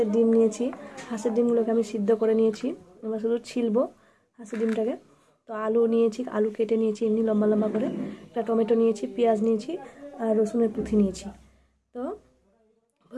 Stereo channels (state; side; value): identical; both; correlation 1.00